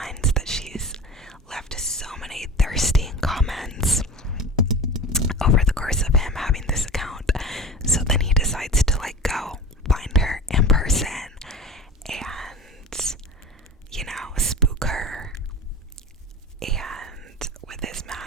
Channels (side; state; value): both; normal; correlation 0.35